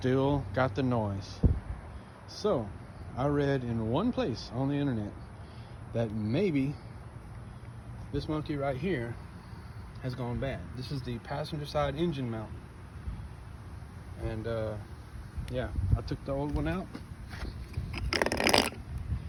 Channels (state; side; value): identical; both; correlation 1.00